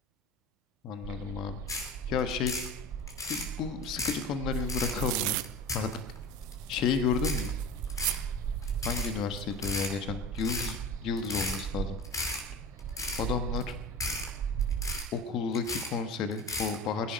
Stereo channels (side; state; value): both; normal; correlation 0.33